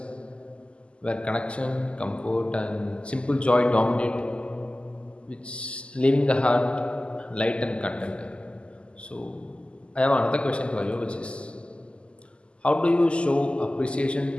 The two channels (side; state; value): right; late; 0.053 ms